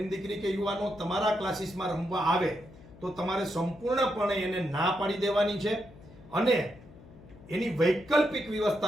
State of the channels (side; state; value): left; noise; hum, 21 dB below the sound